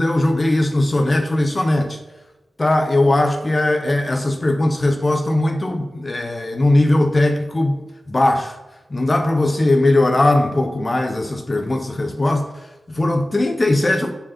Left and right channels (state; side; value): normal; both; correlation 0.97